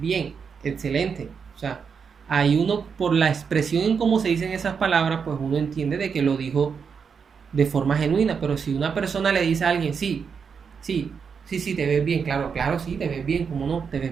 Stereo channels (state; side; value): quieter; left; 6.2 dB